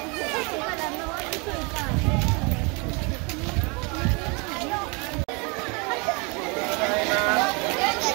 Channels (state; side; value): quieter; left; 30.8 dB